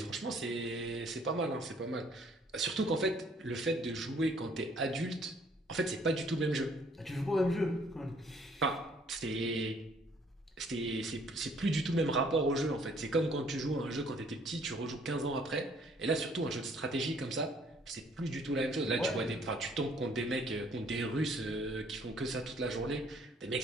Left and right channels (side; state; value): both; normal; correlation 0.61